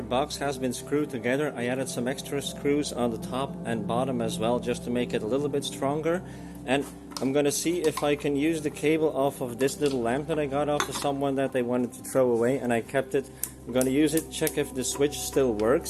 has been screwed together. I added some extra screws on the top and bottom as well, just to make it a little bit stronger. And I'm gonna see if I can use the cable off of this little lamp that I got off of someone that they wanted to throw away, and I kept it. I'm gonna use it, check if the switch still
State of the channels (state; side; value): identical; both; correlation 1.00